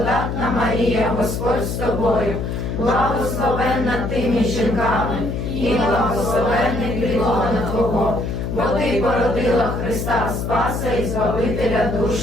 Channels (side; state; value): left; noise; hum, 3 dB below the sound